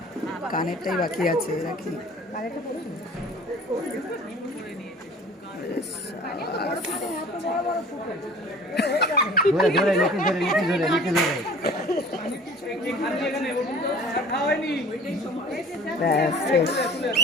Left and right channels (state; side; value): normal; both; correlation 0.45